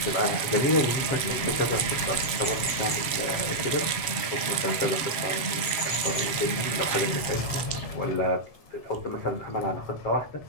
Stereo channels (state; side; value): late; right; 7.4 ms